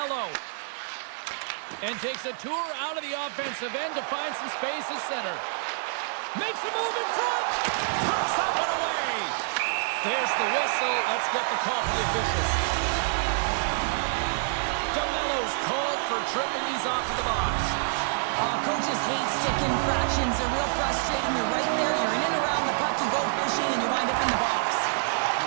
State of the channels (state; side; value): silent; left; digital silence